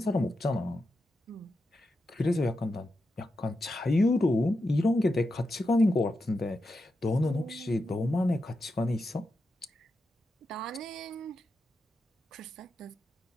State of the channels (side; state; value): both; normal; correlation 0.88